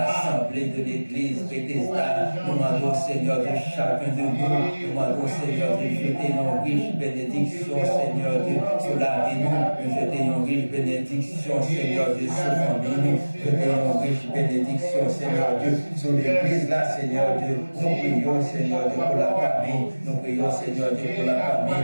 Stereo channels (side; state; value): both; inverted; correlation -1.00